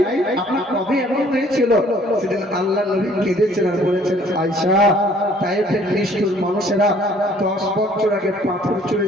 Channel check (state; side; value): normal; both; correlation 0.58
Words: আপনার কবে এমন হয়েছিল। সেদিন আল্লাহ নবী কেঁদেছেন আর বলেছেন, আয়েশা তায়েফের নিষ্ঠুর মানুষেরা 10 বছর আগে পাথর ছুঁড়ে